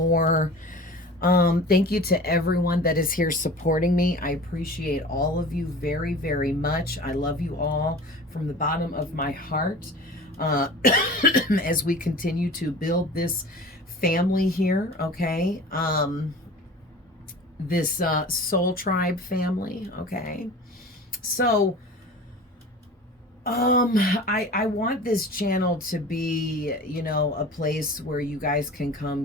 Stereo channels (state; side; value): normal; both; correlation 0.39